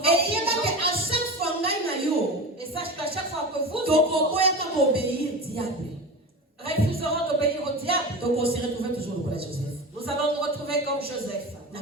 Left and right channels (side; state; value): both; normal; correlation 0.28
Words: en prison. Et sache qu'à chaque fois que vous refuserons d'obéir au diable, donc on se retrouve toujours au Joseph. Nous allons nous retrouver comme Joseph